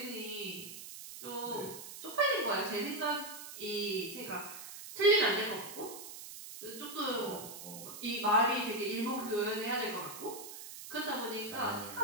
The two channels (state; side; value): noise; right; hiss, 11 dB below the sound